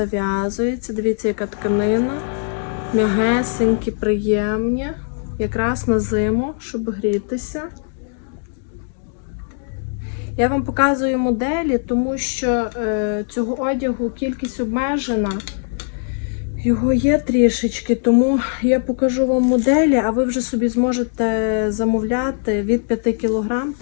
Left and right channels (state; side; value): silent; right; digital silence